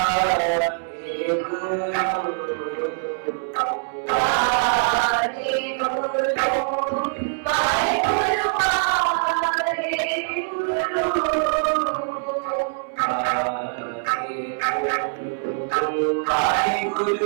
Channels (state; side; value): silent; left; 63 dB below the other